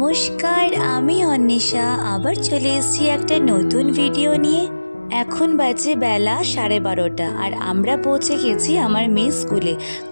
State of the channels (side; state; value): both; inverted; correlation -1.00